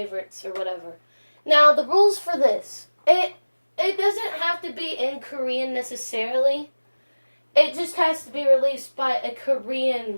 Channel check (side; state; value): both; inverted; correlation -1.00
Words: or whatever. Now the rules for this, it doesn't have to be in Korean necessarily. It just has to be released by a Korean